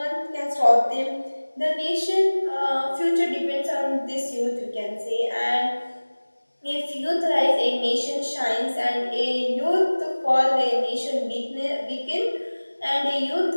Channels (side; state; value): both; inverted; correlation -1.00